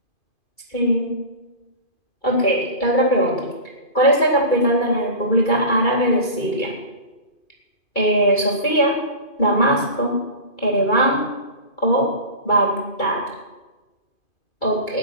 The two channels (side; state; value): right; late; 2.3 ms